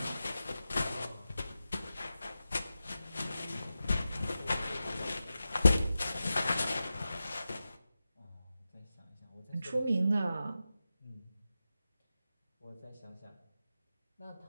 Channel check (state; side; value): inverted; both; correlation -0.92